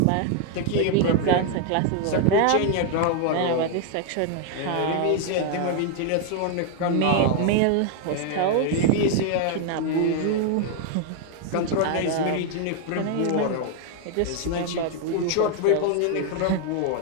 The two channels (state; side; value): different; both; correlation 0.00